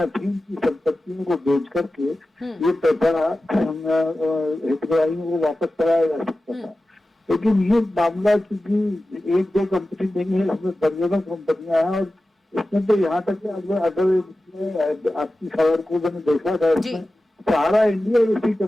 थी उनकी संपत्तियों को बेच करके ये पैसा हितग्राहियों को वापस कराया जा सकता था। लेकिन ये मामला क्योंकि 1-2 कंपनी नहीं है, इसमें दर्जनों कंपनियां हैं, और इसमें तो यहाँ तक अगर आपकी खबर को मैंने देखा था, इसमें सहारा इंडिया जैसी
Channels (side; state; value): both; normal; correlation 0.94